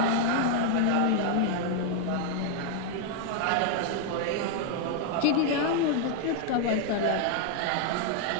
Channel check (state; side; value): different; both; correlation 0.00